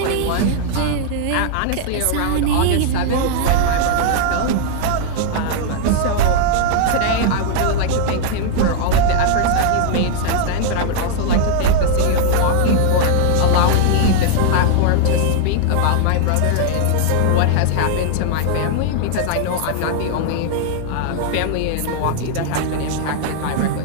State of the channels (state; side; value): different; both; correlation -0.01